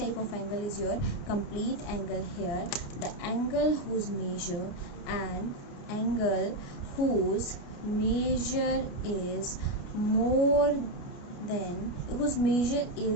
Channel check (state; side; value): late; right; 29 ms